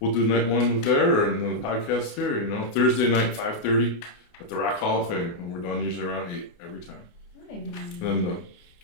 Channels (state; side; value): late; right; 28 ms